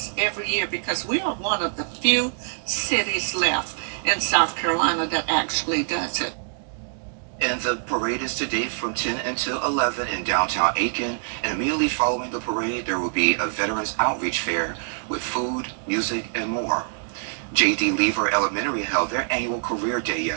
every year because we are one of the few cities left in South Carolina that actually does it. And the parade is today from 10 until 11 in downtown Aiken. And immediately following the parade, there will be a Veterans Outreach Fair with food, music, and more. J.D. Lever Elementary held their annual Career Day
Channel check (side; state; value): left; silent; digital silence